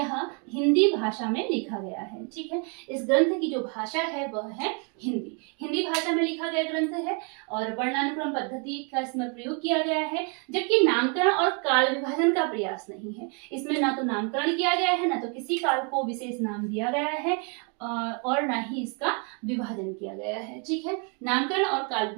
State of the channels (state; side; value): quieter; left; 37.2 dB